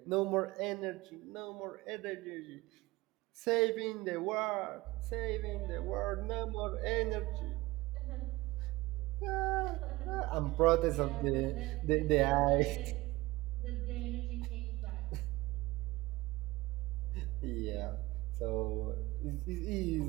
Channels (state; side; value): quieter; left; 20.3 dB